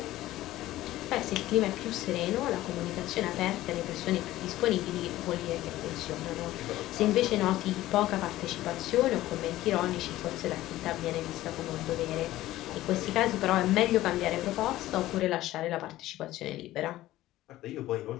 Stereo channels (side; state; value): right; quieter; 15.6 dB